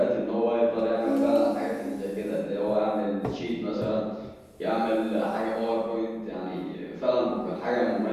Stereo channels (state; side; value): identical; both; correlation 1.00